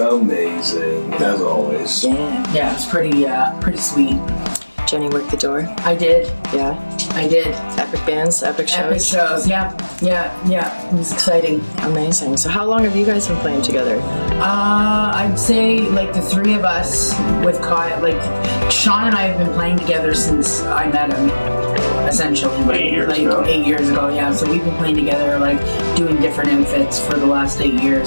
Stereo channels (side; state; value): both; inverted; correlation -1.00